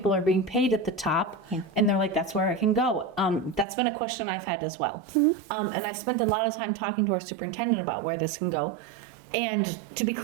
are being paid at the top, and they're like, that's where I can go. That's been a question I've had as well. And I've spent a lot of time talking to our superintendent about where this can go. And to be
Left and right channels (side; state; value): left; drops out; at 3.7 s